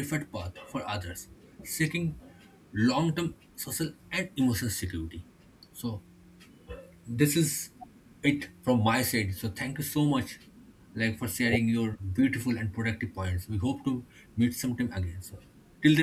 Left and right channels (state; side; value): identical; both; correlation 1.00